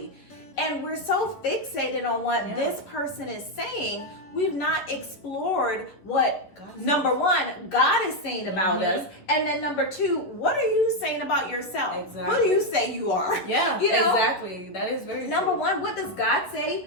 And we're so fixated on what this person is saying, we've not explored what, number one, God is saying about us. And then number two, what are you saying about yourself? Exactly. Who do you say you are? Yeah, you know? Exactly. That is very Number true. one, what does God say?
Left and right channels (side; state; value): right; late; 11 ms